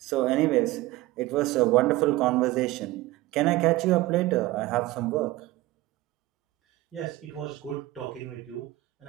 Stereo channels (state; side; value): quieter; left; 18.0 dB